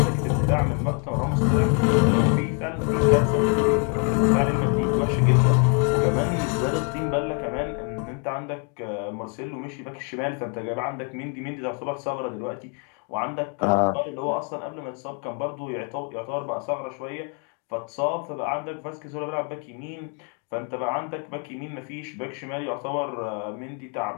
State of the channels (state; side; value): quieter; right; 39.4 dB